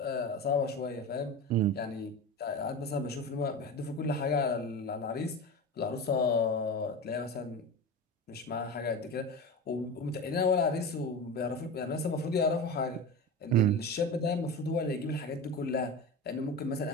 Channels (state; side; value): normal; both; correlation 0.26